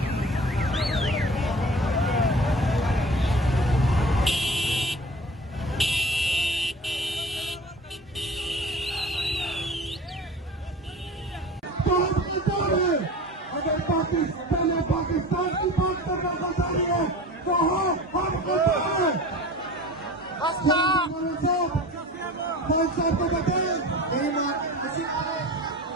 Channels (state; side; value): normal; both; correlation 0.38